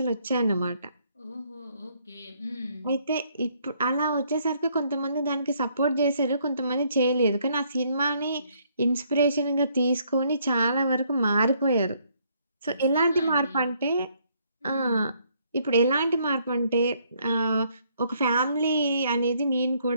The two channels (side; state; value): both; inverted; correlation -0.68